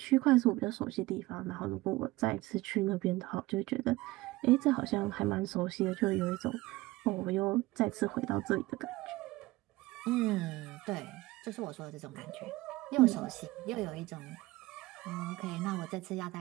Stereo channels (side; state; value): left; quieter; 19.5 dB